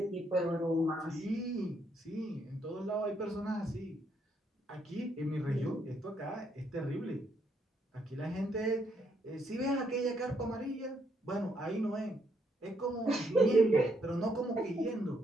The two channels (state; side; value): normal; both; correlation 0.74